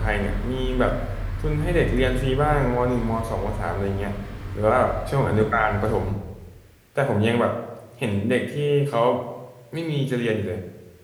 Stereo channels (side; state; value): both; identical; correlation 1.00